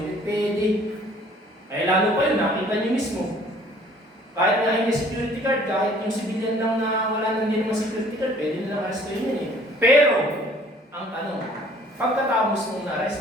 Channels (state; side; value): normal; both; correlation 0.55